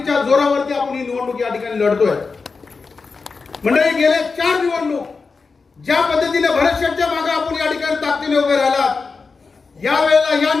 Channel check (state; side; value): quieter; right; 4.6 dB